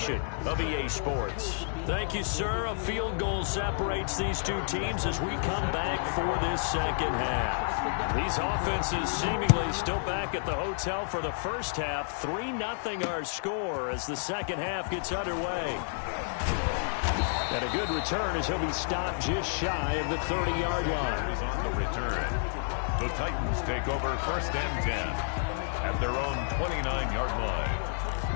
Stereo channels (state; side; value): silent; right; 58 dB below the other